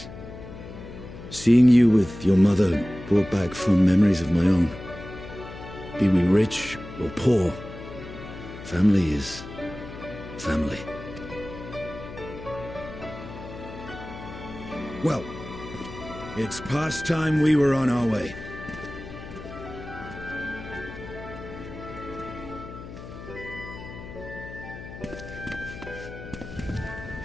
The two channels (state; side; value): noise; left; hum, 13 dB below the sound